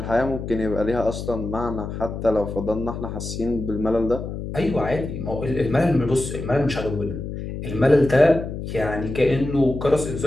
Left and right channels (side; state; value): left; noise; hum, 7 dB below the sound